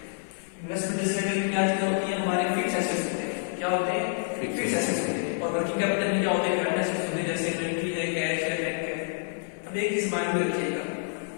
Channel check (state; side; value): silent; right; 59 dB below the other